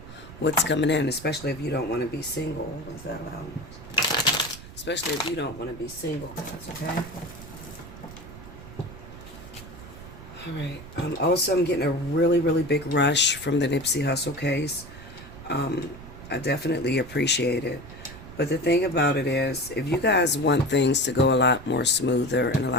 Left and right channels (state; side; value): noise; right; rumble, 15 dB below the sound